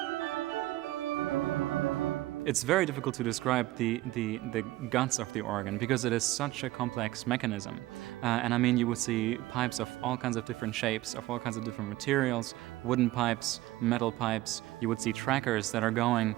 It's very difficult to describe the guts of the organ because it is such a complex mechanism. And I mean, you would see pipes of all kinds of different shapes, of all kinds of different materials, wooden pipes, metal pipes. You would see trackers that are going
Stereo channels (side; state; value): left; quieter; 17.2 dB